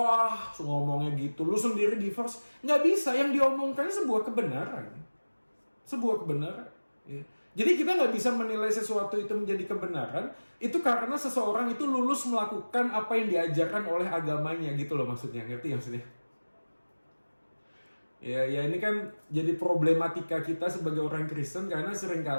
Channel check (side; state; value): both; inverted; correlation -1.00